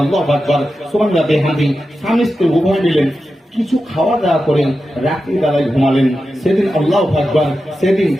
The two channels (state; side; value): normal; both; correlation 0.91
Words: আকবার, সুবহানাল্লাহ বিহামদি স্বামী স্ত্রী উভয় মিলেন কিছু খাওয়া দাওয়া করেন, রাত্রি বেলায় ঘুমালেন। সেদিন আল্লাহু আকবার, সেদিন